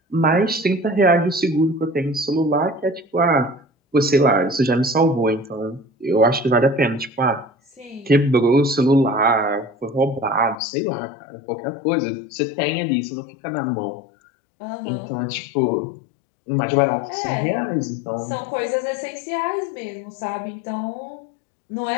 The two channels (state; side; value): drops out; right; at 10.6 s